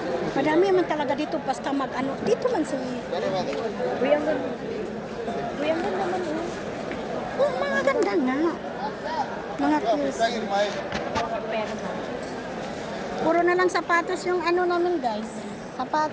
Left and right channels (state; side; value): identical; both; correlation 1.00